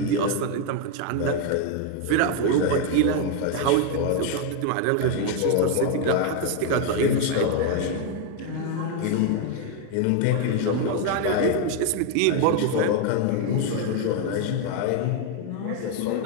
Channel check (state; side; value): different; both; correlation 0.01